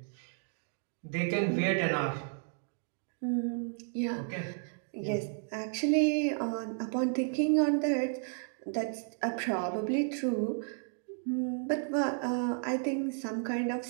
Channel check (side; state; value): left; silent; 56 dB below the other